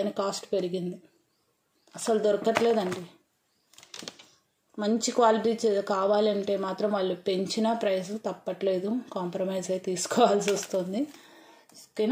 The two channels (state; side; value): identical; both; correlation 1.00